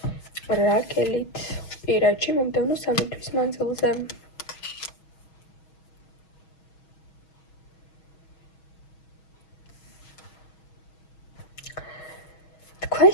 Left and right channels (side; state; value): right; late; 6.3 ms